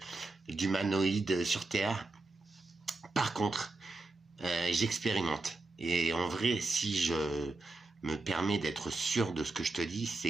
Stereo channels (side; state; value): left; quieter; 3.2 dB